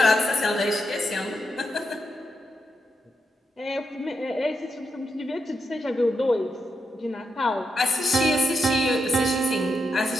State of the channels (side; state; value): both; normal; correlation 0.84